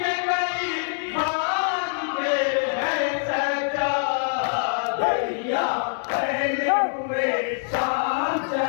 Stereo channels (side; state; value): right; silent; digital silence